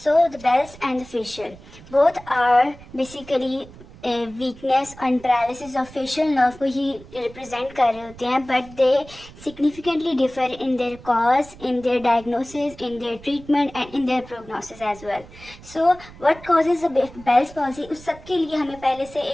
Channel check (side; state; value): right; noise; rumble, 20 dB below the sound